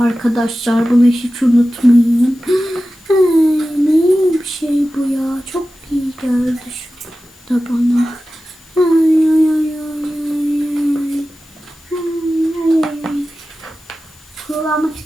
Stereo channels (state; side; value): noise; left; hiss, 29 dB below the sound